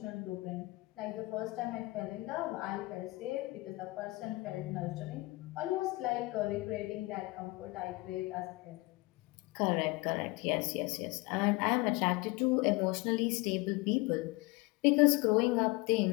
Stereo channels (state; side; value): quieter; right; 23.1 dB